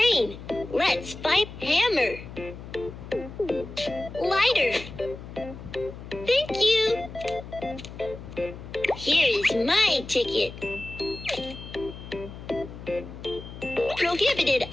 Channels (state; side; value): noise; left; hum, 13 dB below the sound